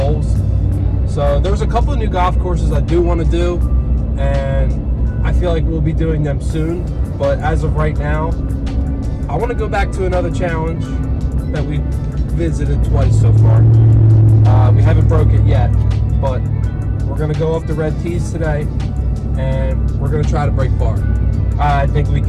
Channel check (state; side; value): identical; both; correlation 1.00